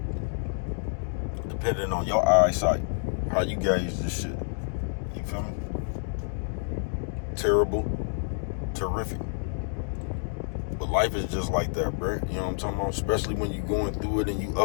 Depending on your eyesight, how you gauge this shit. You feel me? Terrible, terrific. But life is just like that, bro. You know what I'm talking about? Especially when you going through it and you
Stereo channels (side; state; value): right; silent; digital silence